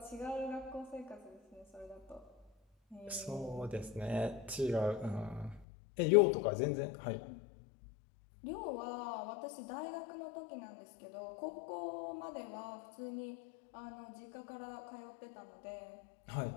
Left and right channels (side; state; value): right; drops out; at 5.7 s